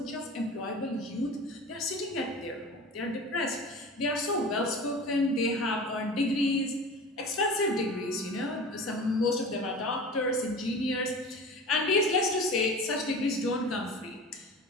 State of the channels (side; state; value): both; normal; correlation 0.35